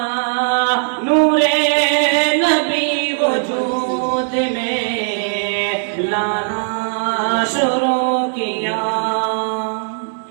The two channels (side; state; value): left; silent; digital silence